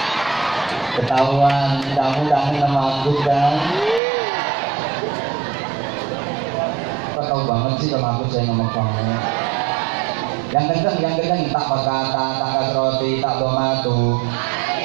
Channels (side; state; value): left; drops out; at 4.0 s